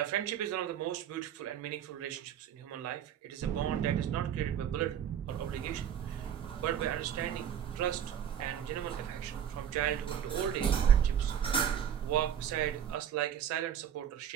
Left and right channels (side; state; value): left; quieter; 9.3 dB